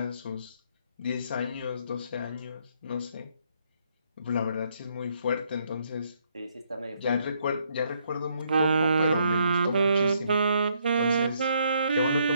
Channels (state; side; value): inverted; both; correlation -0.72